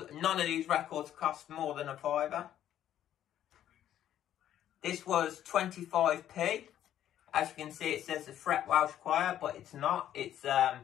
none of these records cost more than a £5. This was 25p. As you can see, it says the Fret Welsh Choir, but it's not. It's A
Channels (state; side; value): quieter; right; 11.3 dB